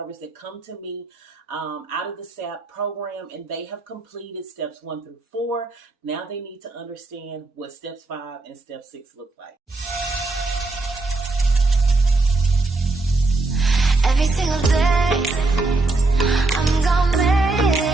that come to me out of the SAP program and they have completed steps 1 through 4. Now they need to understand what steps 5 and step 6 look like. Every single day, I'm gonna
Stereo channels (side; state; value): left; quieter; 3.3 dB